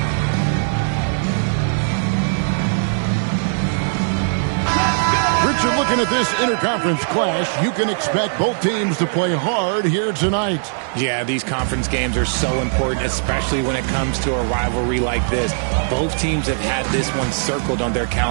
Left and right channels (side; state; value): left; silent; digital silence